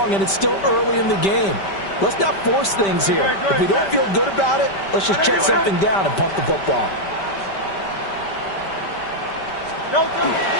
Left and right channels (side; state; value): right; late; 5.1 ms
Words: and it's still early in the game. Let's not force things here. If we don't feel good about it, let's just check something down and punt the football.